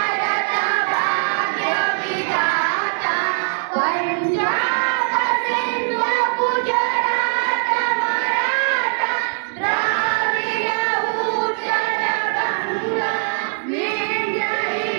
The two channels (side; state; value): left; silent; 64 dB below the other